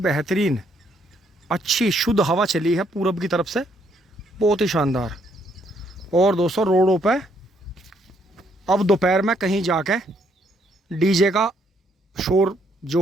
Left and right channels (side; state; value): both; normal; correlation 0.71